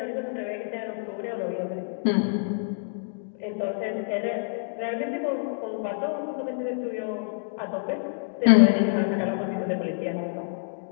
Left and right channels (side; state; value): right; silent; digital silence